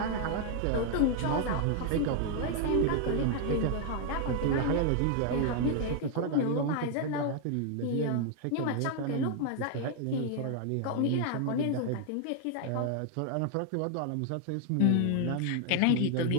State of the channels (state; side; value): different; both; correlation 0.00